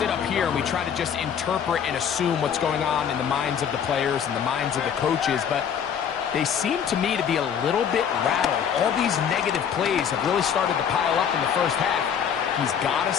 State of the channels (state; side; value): quieter; right; 8.0 dB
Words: up here and we try to just interpret and assume what's going on in the minds of the players and the minds of the coaches, but they seem to me to be a little bit rattled. All these negative plays have really started to pile up in the first half. He's got to